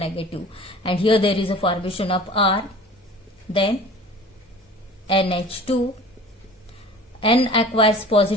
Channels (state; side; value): normal; both; correlation 0.43